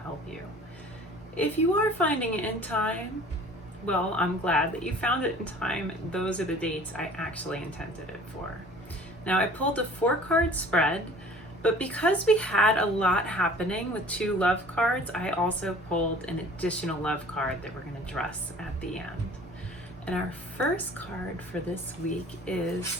help you. If you are finding it in time, well, I'm glad that you found it in time. Those are the dates I actually intended it for. Now, I pulled a 4-card spread, but because we had a lot happening with 2 love cards, I also pulled an additional love card that we're going to address at the end. And our first card for this week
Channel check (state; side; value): normal; both; correlation 0.48